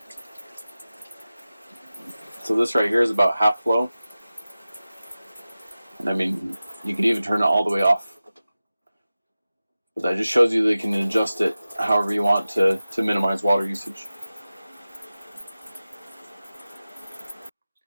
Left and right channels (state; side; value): inverted; both; correlation -0.95